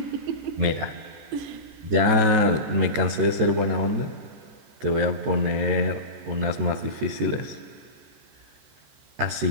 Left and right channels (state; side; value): late; left; 13 ms